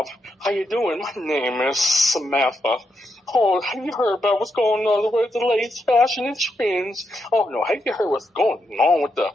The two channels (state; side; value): normal; both; correlation 0.82